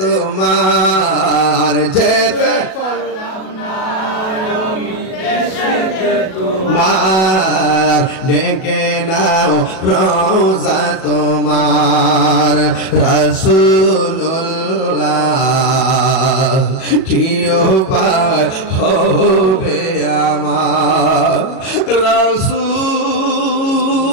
যেতে পারলাম না আমি দেশেতে তোমার। ডেকে নাও রোজা তোমার, রাসূলুল্লাহ কি উপায় হবে আমার রাসূলুল্লাহ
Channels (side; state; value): right; late; 37 ms